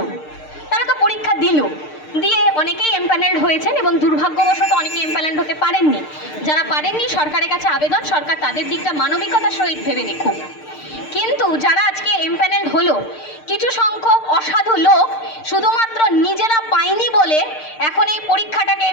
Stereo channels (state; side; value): late; right; 6.6 ms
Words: তারা তো পরীক্ষা দিল, দিয়ে অনেকেই এমপ্যানেলড হয়েছেন এবং দুর্ভাগ্যবশত অনেকে এমপ্যানেলড হতে পারেননি। যারা পারেননি, সরকারের কাছে আবেদন, সরকার তাদের দিকটা মানবিকতার সহিত ভেবে দেখুক। কিন্তু যারা আজকে এমপ্যানেলড হলো, কিছু সংখ্যক অসাধু লোক শুধুমাত্র নিজেরা পায়নি বলে এখন এই পরীক্ষাটাকে,